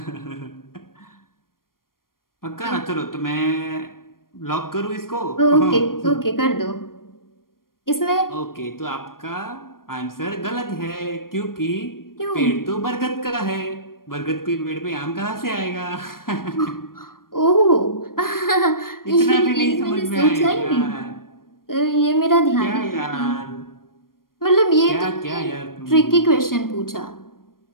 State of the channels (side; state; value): right; late; 0.91 ms